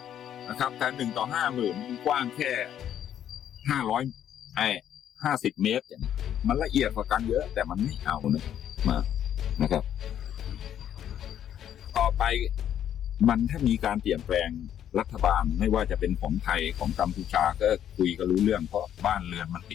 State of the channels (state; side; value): quieter; right; 10.2 dB